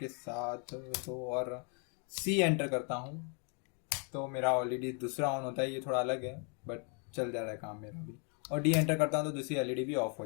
साथ। तो और सी एंटर करता हूँ तो मेरा ऑलरेडी दूसरा ऑन होता है, ये थोड़ा अलग है बट चल जा रहा है काम मेरा भी। और डी एंटर करता हूँ तो दूसरी एलईडी भी ऑफ हो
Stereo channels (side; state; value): right; quieter; 38.5 dB